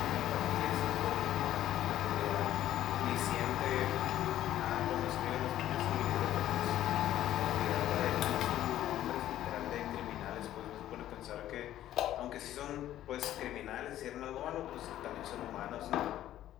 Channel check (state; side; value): quieter; right; 12.8 dB